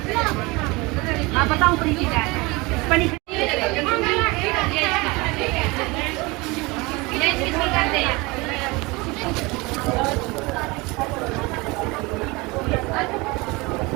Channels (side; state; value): left; quieter; 24.4 dB